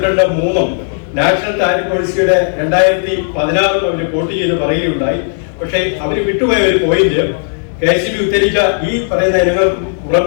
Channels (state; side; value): silent; right; 69 dB below the other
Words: നാഷണൽ താരിഫ് പോളിസിയുടെ 2016 അവർ കോട്ട് ചെയ്ത് പറയുകയുണ്ടായി. പക്ഷേ അവർ വിട്ടുപോയ ഒരു പോയിന്റ്, KCB ഉദ്ധരിച്ച ഈ പറയുന്ന ഇനങ്ങൾക്ക്